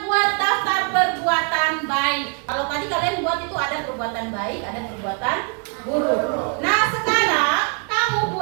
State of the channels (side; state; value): left; quieter; 37.8 dB